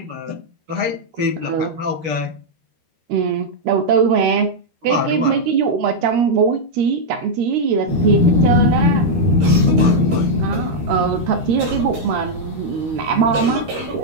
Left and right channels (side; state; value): left; late; 13 ms